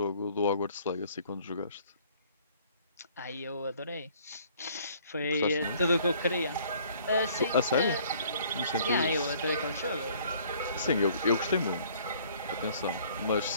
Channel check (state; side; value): inverted; both; correlation -0.57